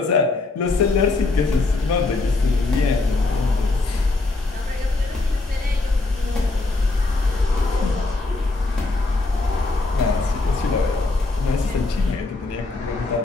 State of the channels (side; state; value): right; quieter; 3.3 dB